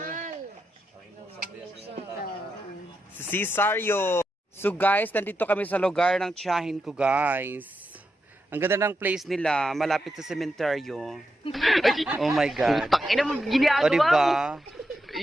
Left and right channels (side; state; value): both; normal; correlation 0.86